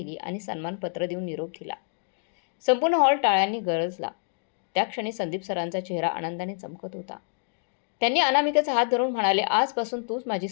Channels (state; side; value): silent; right; digital silence